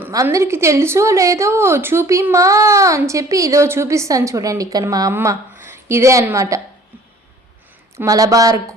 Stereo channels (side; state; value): both; normal; correlation 0.52